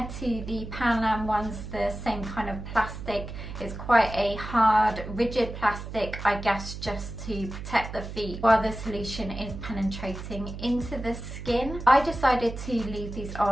to the Panam ones, the same kind of plastic. It's quite a hard, rigid plastic, I guess, just to protect the feet while the solution is penetrating into the skin. I decided to leave these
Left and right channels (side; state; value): right; noise; hum, 9 dB below the sound